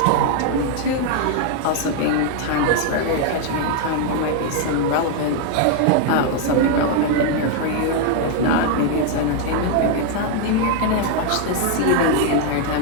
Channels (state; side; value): different; both; correlation 0.00